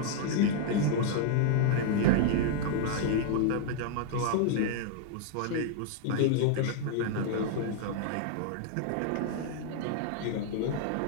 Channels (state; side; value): different; both; correlation -0.01